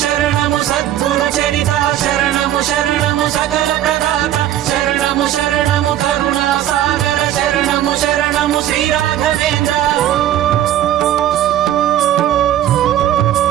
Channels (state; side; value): quieter; left; 12.2 dB